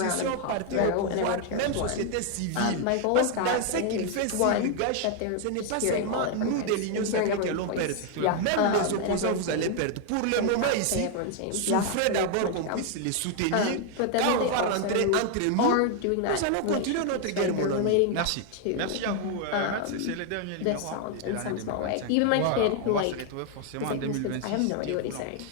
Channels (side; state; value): both; different; correlation 0.00